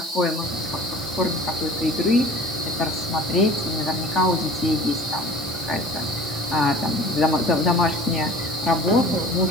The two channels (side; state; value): right; noise; hiss, 13 dB below the sound